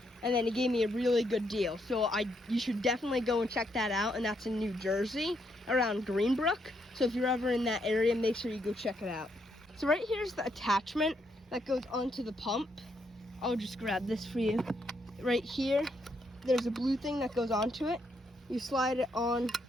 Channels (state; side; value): normal; both; correlation 0.76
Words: and then he gave me a really good deal. So you should definitely go and check that out, and that's in New Jersey, around Greenbrook. So if you're ever in that area, make sure you go check it out. So right here's the attachment that goes onto the pump. I'll just grab this for you. Right here, there's a blue thing that goes onto it. You slide it on